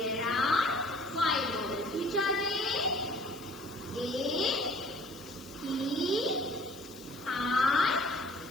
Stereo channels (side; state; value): left; noise; hiss, 20 dB below the sound